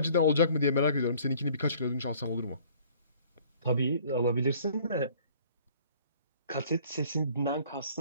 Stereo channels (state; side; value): inverted; both; correlation -0.54